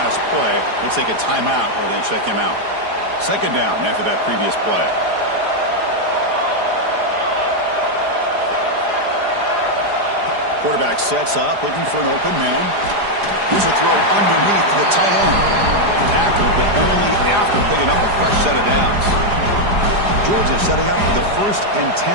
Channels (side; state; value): left; late; 4.9 ms